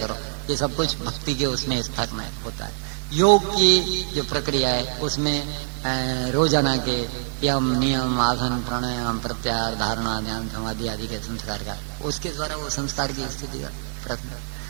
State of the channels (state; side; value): silent; left; 62 dB below the other